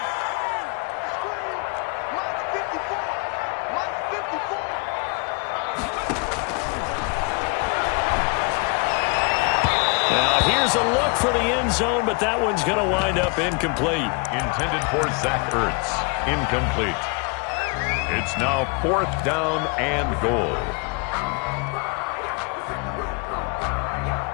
Now here's a look for the end zone, but that one's going to wind up incomplete. Intended for Zach Ertz. Incomplete. It's now 4th down and goal.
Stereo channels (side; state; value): right; quieter; 32.8 dB